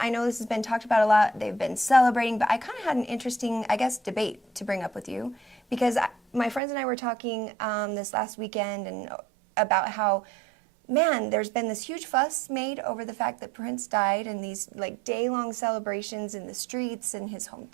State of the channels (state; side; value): drops out; left; at 6.6 s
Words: know this has been talked about a lot, they've been celebrating, but I kind of had an interesting, I guess, debate to bring up with you, because my friends and I were talking this last weekend and about how, man, there's been this huge fuss made over the fact that Prince died, and these like day-long celebrations in the streets in his